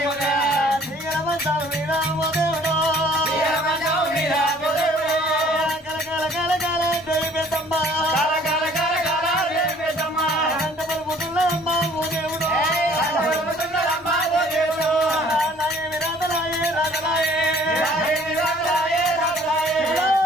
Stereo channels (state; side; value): normal; both; correlation 0.55